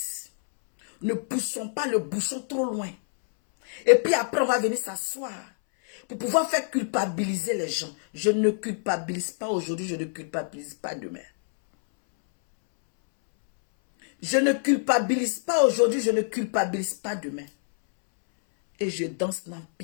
Ne poussons pas le bouchon trop loin. Et puis après, on va venir s'asseoir pour pouvoir faire culpabiliser les gens. Je ne culpabilise pas aujourd'hui, je ne culpabilise pas demain. Je ne culpabilise pas aujourd'hui, je ne culpabilise pas demain. Et je danse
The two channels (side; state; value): right; silent; 61 dB below the other